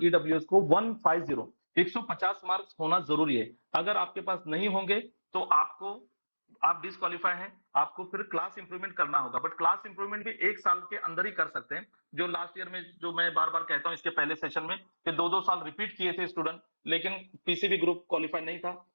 ईडब्ल्यूएस को 150 मार्क्स होना जरूरी है। अगर आपके पास नहीं होंगे तो आप डिस्क्वालीफाई हैं, आपको फिर क्लास इंप्रूवमेंट करना होगा। बट क्लास इंप्रूवमेंट भी 1 साल के अंदर ही कर सकते हैं। जो लास्ट ईयर में, जो मैं बार बार कहता हूं इसके पहले सेशन में, कि 2-2 साल रिपीट किए थे स्टूडेंट, लेकिन पीसीबी ग्रुप क्वालिफाई नहीं था।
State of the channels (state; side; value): inverted; both; correlation -1.00